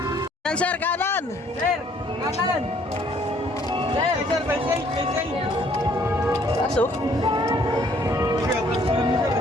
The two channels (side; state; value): both; normal; correlation 0.62